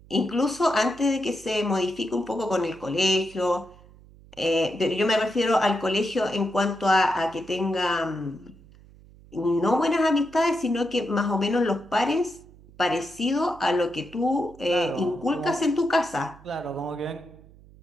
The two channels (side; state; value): right; noise; hum, 24 dB below the sound